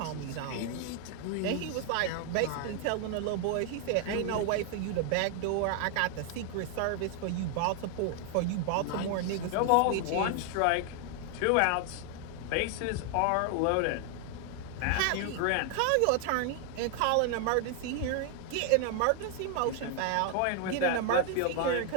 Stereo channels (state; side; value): different; both; correlation 0.00